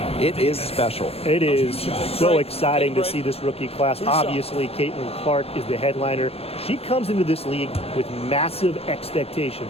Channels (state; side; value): late; right; 0.29 ms